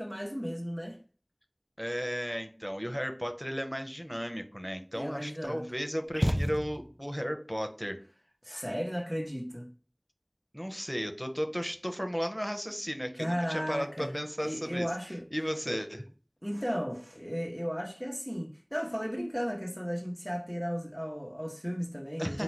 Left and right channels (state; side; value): identical; both; correlation 1.00